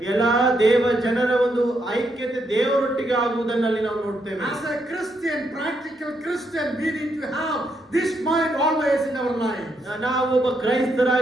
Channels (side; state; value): both; normal; correlation 0.78